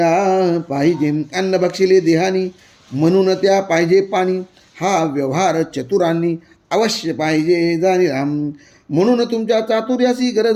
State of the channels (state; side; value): identical; both; correlation 1.00